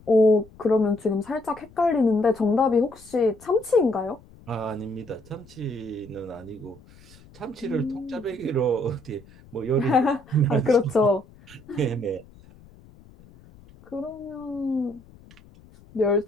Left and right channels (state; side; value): noise; left; rumble, 24 dB below the sound